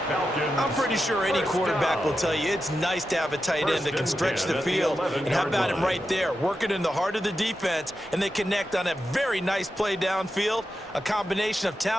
I'm pretty sure any quarterback will tell you it's nice to have a tight end that can stretch the field. And how about him right there, working in the heart of the defense, and they connect on a very nice play downfield, a combination of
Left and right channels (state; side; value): normal; both; correlation 0.89